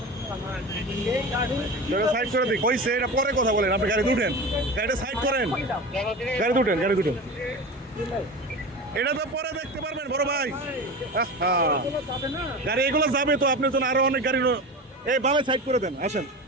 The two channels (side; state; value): both; normal; correlation 0.29